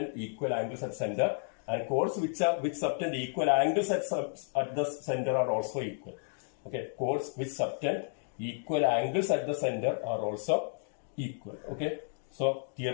equal angles at center, and chords which subtend equal angles at the center are also equal. Okay, chords which subtend equal angles at the center are also equal. Okay. So,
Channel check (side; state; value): right; silent; digital silence